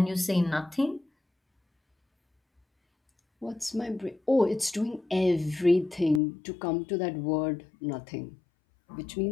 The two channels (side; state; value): right; drops out; at 6.2 s